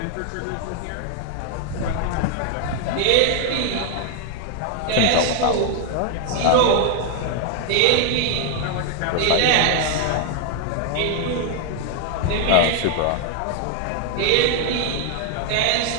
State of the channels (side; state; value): both; different; correlation 0.00